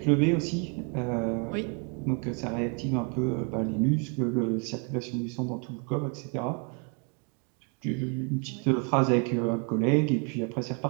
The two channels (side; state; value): left; quieter; 36.5 dB